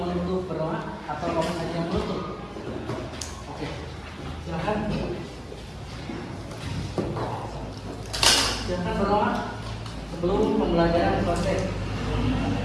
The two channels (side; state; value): both; identical; correlation 1.00